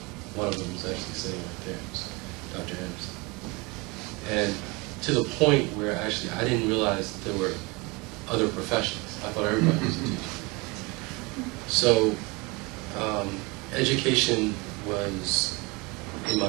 One of them was actually sitting right there, Dr. Anderson. And to the point where actually I didn't realize that there were other professions. I thought everybody was a teacher. So education was in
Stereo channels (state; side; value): quieter; left; 26.3 dB